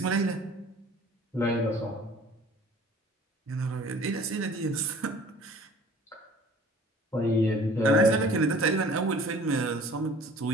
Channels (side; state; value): both; normal; correlation 0.49